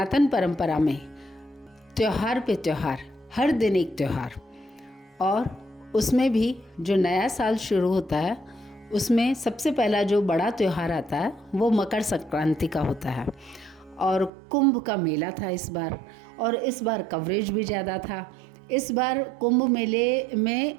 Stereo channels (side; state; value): left; drops out; at 14.3 s